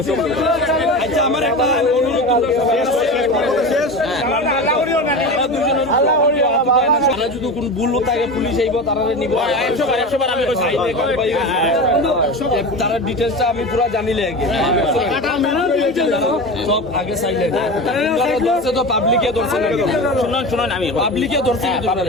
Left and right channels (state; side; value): normal; both; correlation 0.27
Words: আচ্ছা আমার একটা অনুরোধ তোমরা শেষ তারা যদি কোন ভুল থাকে পুলিশ আইব তারা নিব 100 বার আমি কইছি তারা ডিটেইলসটা আমি পুরো জানিলে আগে সব আগে সাইলেন্ট ধরছে তো পাবলিকে ধরছে শুনুন আমি পাবলিকে ধরছে